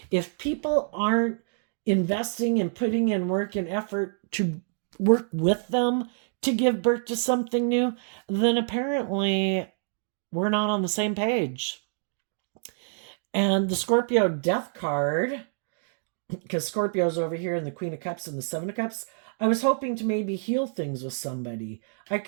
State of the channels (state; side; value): silent; left; digital silence